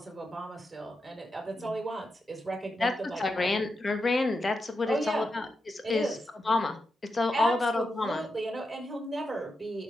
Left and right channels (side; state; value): both; normal; correlation 0.87